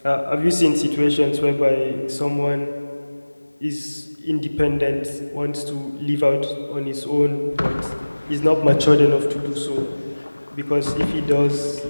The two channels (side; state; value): both; inverted; correlation -1.00